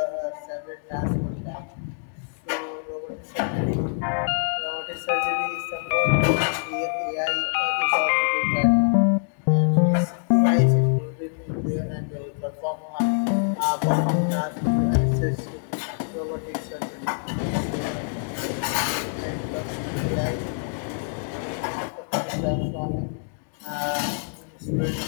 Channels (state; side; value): silent; right; digital silence